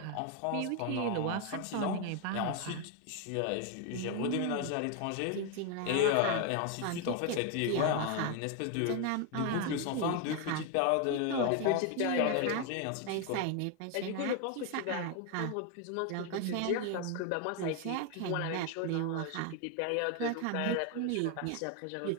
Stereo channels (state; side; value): different; both; correlation 0.01